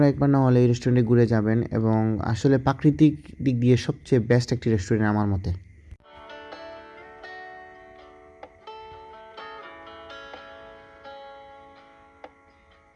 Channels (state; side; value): identical; both; correlation 1.00